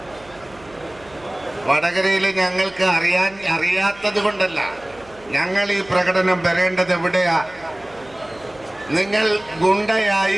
വടകരയിൽ ഞങ്ങൾക്ക് അറിയാത്തത് കൊണ്ടല്ല ഞങ്ങൾ ഈ പ്രകടനം വരേണ്ടത് എവിടെയാ? നിങ്ങൾ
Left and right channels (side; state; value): right; noise; hum, 25 dB below the sound